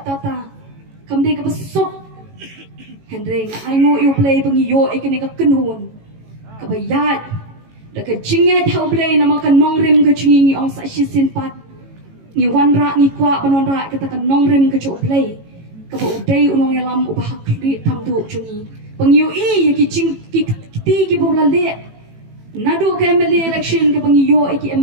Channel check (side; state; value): left; late; 18 ms